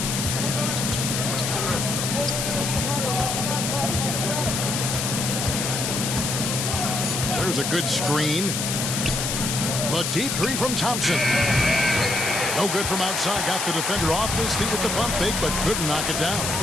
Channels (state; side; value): noise; left; hiss, 1 dB below the sound